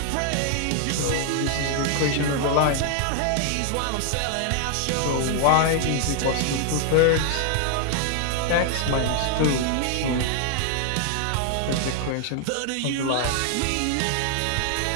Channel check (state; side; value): different; both; correlation 0.00